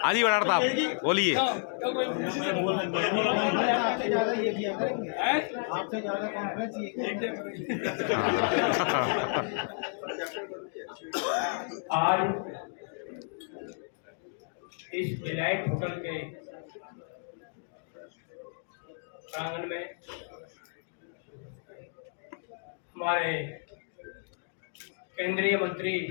हाँ जी भड़ाना साहब बोलिए। आपसे ज्यादा कॉन्फ्रेंस आज इस डिलाइट होटल के प्रांगण में हमारे केंद्रीय मंत्री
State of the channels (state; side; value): silent; right; 55 dB below the other